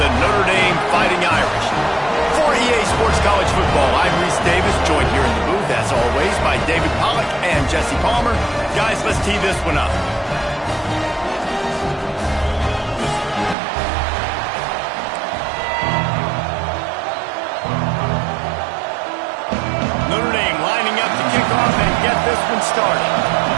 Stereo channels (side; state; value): left; drops out; at 13.6 s